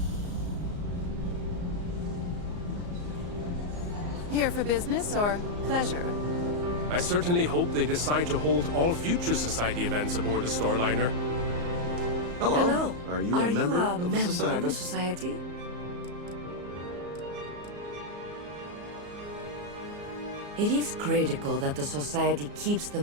Here for business or pleasure? I certainly hope they decide to hold all future Society events aboard the Starliner. Hello. Are you a member of the Society? It is critical that the Society keeps the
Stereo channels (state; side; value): late; left; 34 ms